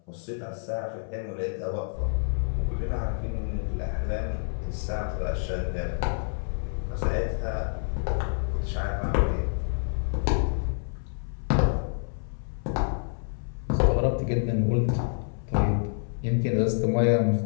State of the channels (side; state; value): right; silent; 59 dB below the other